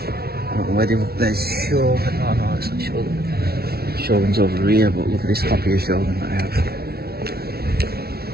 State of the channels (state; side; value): late; left; 0.45 ms